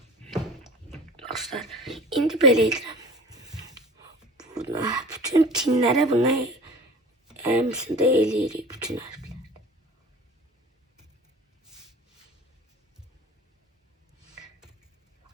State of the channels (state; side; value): normal; both; correlation 0.41